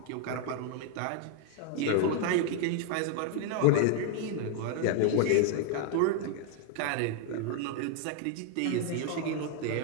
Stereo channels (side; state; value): both; different; correlation 0.00